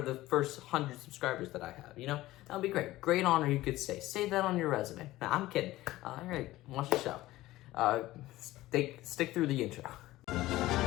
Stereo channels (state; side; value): quieter; right; 16.8 dB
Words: the first 100 subscribers that I have. You know, that would be great. Great honor, you could say. Save that on your resume. Nah, I'm kidding. All right, watch the show. Stick through the intro.